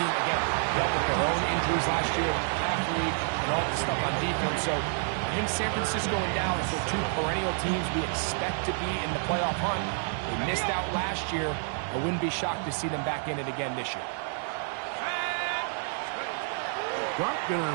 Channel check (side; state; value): left; silent; 55 dB below the other